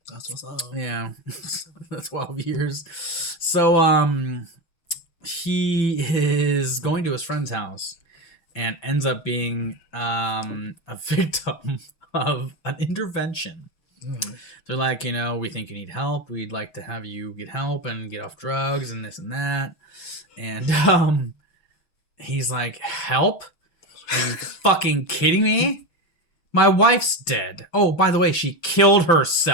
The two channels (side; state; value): right; late; 5.9 ms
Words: That's what's up. Yeah. 12 years. So, he is going to his friend's house and ends up being a victim of an intervention. They're like, we think you need help. We'd like to have you get help and get off drugs and this and that. And he's like, help? Are you fucking kidding me? My wife's dead. Oh, by the way, she killed